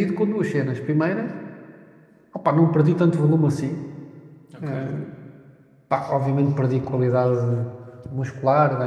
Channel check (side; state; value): both; identical; correlation 1.00